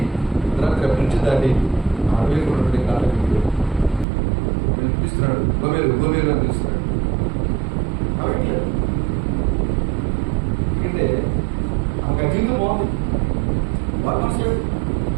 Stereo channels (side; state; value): left; drops out; at 4.0 s